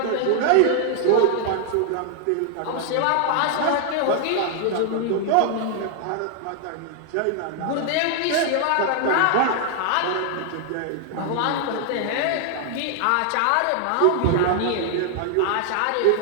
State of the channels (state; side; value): different; both; correlation 0.00